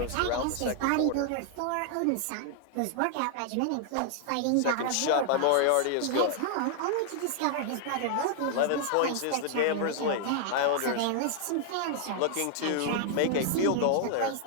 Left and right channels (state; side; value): different; both; correlation 0.00